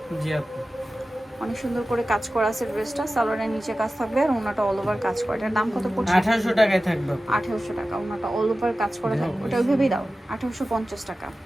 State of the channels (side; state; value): both; normal; correlation 0.95